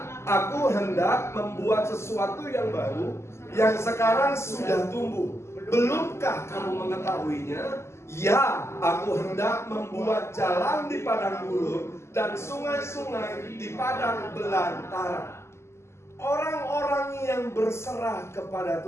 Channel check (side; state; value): right; late; 0.13 ms